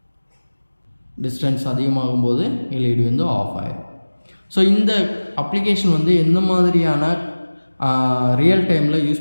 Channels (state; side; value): inverted; both; correlation -1.00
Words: டிஸ்டன்ஸ் அதிகமாகும்போது எல்இடி வந்து ஆஃப் ஆயிடும். ஸோ இந்த அப்ளிகேஷன் வந்து எந்த மாதிரியான ரியல் டைமில்